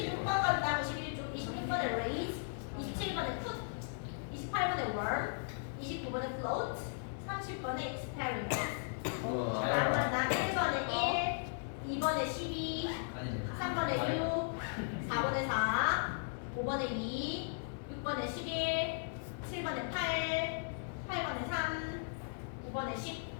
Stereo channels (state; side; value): silent; right; digital silence